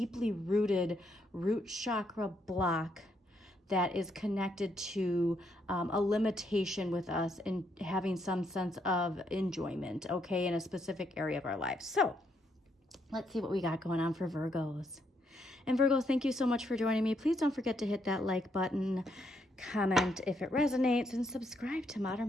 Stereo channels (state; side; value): normal; both; correlation 0.75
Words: rooted root chakra block that is connected to a limitation with us in having some sense of enjoyment, okay, in a specific area of our lives. So let's see what we got going on for Virgos. And Virgos, thank you so much for joining me. Please don't forget to hit that like button, comment if it resonates, and subscribe to